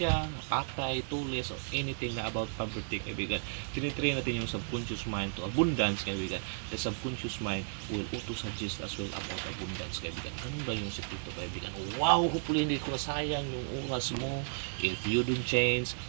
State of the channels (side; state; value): left; silent; digital silence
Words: patay, tulis, or anything na about poverty, kaibigan. Tinitrain natin yung subconscious mind to abundance, kaibigan. The subconscious mind will auto-suggest as well about abundance, kaibigan. Ganun ba yung sikreto, kaibigan? Wow, hopefully hindi ko nasayang yung oras mo. If you don't change,